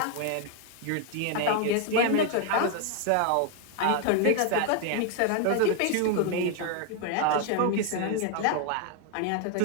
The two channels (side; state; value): both; different; correlation 0.00